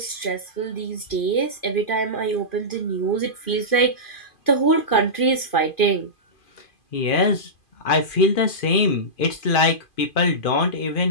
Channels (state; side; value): late; right; 2.5 ms